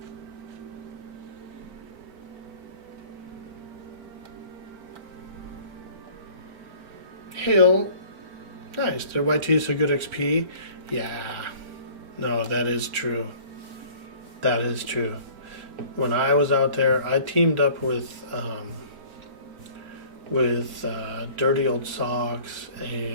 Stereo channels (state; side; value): late; left; 4.5 ms